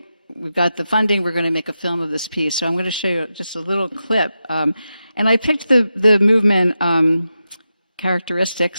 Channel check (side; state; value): both; inverted; correlation -0.89